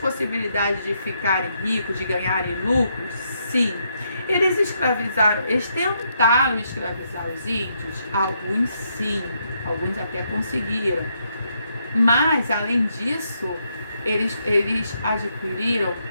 de ficarem ricos, de ganharem lucros? Sim. Eles escravizaram, eles tentaram escravizar os índios? Alguns sim, alguns até conseguiram. Mas, além disso, eles adquiriram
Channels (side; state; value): both; inverted; correlation -0.77